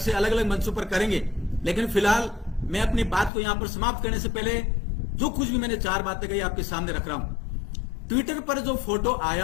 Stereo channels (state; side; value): drops out; right; at 3.3 s